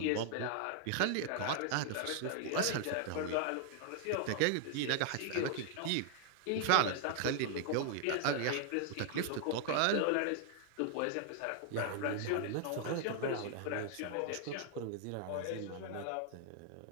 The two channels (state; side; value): different; both; correlation 0.00